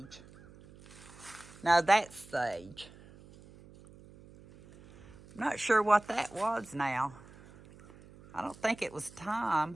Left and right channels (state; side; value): noise; right; hum, 22 dB below the sound